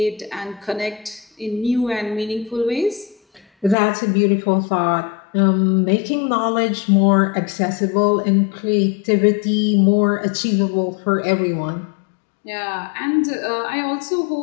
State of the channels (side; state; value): right; drops out; at 3.8 s